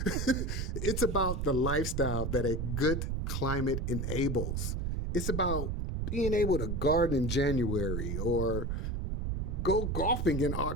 It's about the lifestyle that a good climate enables. It's about being able to garden in January or go golfing in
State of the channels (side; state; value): right; noise; rumble, 1 dB below the sound